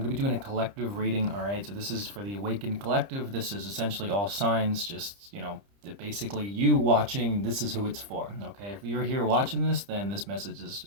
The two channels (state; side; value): late; left; 30 ms